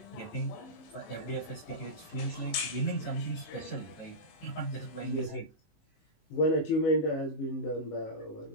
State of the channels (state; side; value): late; right; 19 ms